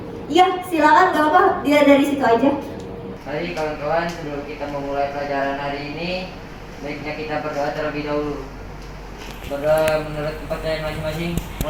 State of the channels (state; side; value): identical; both; correlation 1.00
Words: Iya, silakan, gak apa, dia dari situ aja. Mari kawan-kawan, sebelum kita memulai pelajaran hari ini, baiknya kita berdoa terlebih dahulu. Berdoa menurut kepercayaan masing-masing.